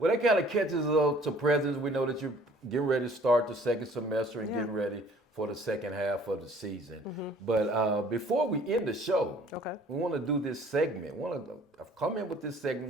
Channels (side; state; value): both; normal; correlation 0.55